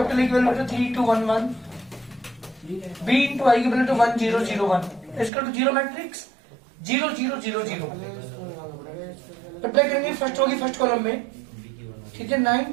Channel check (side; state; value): left; drops out; at 5.3 s